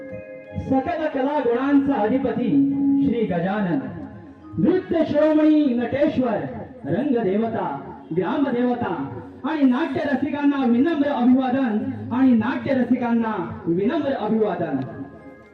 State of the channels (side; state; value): both; identical; correlation 1.00